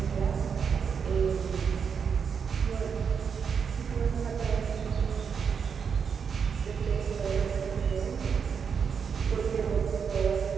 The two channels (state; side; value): quieter; left; 6.5 dB